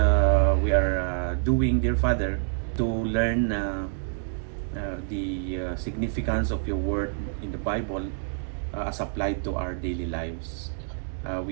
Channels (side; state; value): left; silent; digital silence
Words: are doing, dear Father, to learn the significance of your word in the Bible as applied to our daily lives.